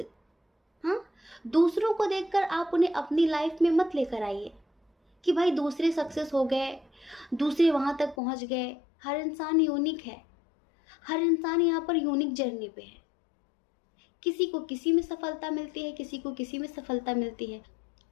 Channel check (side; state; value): right; drops out; at 8.2 s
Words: हाँ, दूसरों को देखकर आप उन्हें अपनी लाइफ में मत लेकर आइए कि भाई दूसरे सक्सेस हो गए, दूसरे वहाँ तक पहुँच गए। हर इंसान यूनिक है, हर इंसान यहाँ पर यूनिक जर्नी पे है। किसी को किसी में सफलता मिलती है, किसी को किसी में सफलता मिलती है।